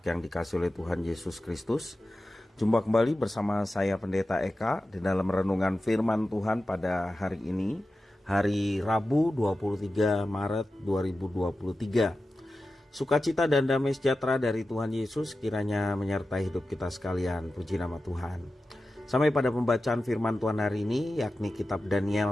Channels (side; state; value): both; normal; correlation 0.93